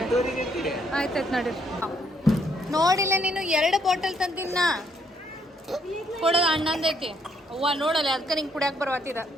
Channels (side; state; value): both; normal; correlation 0.70